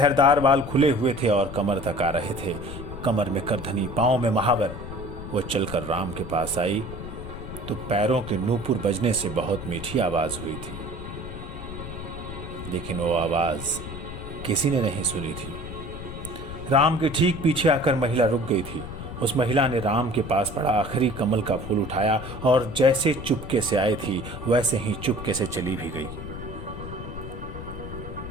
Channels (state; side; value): noise; left; rumble, 9 dB below the sound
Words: बाल खुले हुए थे और कमर तक आ रहे थे, कमर में करधनी, पांव में महावर। वो चलकर राम के पास आई तो पैरों के नूपुर बजने से बहुत मीठी आवाज हुई थी, लेकिन वो आवाज किसी ने नहीं सुनी थी। राम के ठीक पीछे आकर महिला रुक गई थी। उस महिला ने राम के पास पड़ा आखिरी कमल का फूल उठाया और जैसे चुपके से आई थी वैसे ही चुपके से चली भी गई।